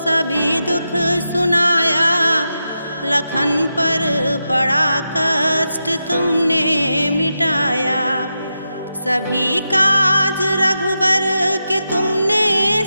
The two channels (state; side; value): inverted; both; correlation -0.88